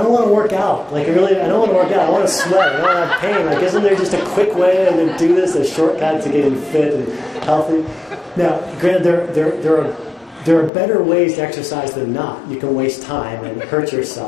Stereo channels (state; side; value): drops out; right; at 10.7 s